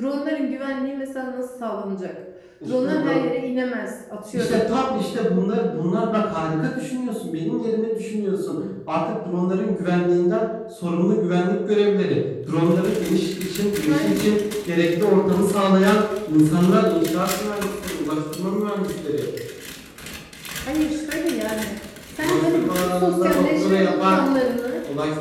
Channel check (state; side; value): identical; both; correlation 1.00